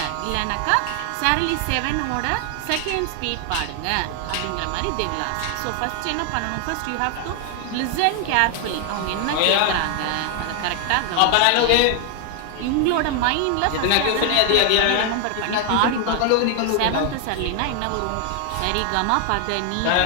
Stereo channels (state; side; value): different; both; correlation 0.00